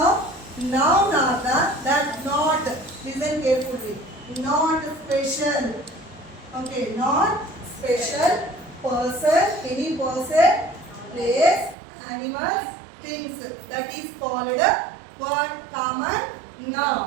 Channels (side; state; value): left; drops out; at 11.8 s